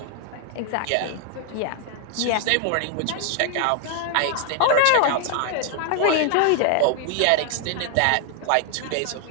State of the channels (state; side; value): different; both; correlation 0.00